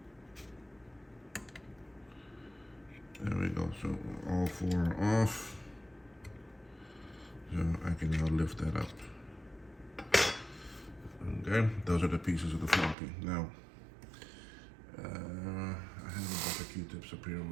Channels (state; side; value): drops out; left; at 13.0 s